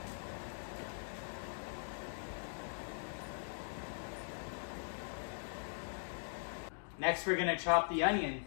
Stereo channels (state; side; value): silent; right; digital silence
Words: Next, we're gonna chop the onion.